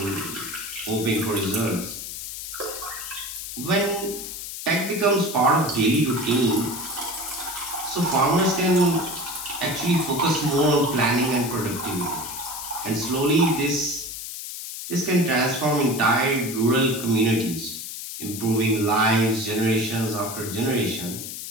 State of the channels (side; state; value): left; noise; hiss, 8 dB below the sound